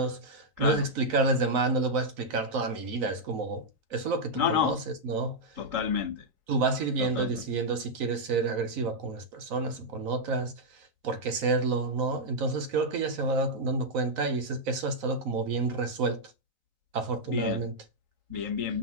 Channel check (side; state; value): left; late; 4.0 ms